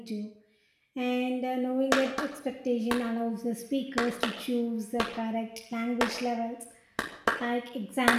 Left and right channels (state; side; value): identical; both; correlation 1.00